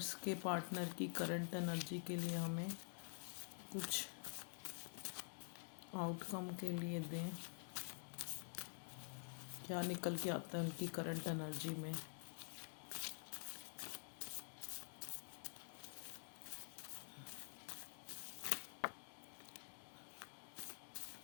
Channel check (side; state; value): right; silent; digital silence